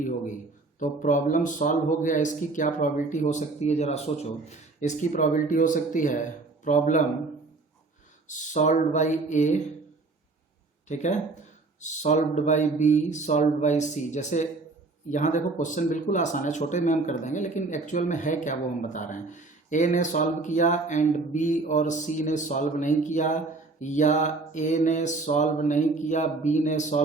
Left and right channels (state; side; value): quieter; left; 3.5 dB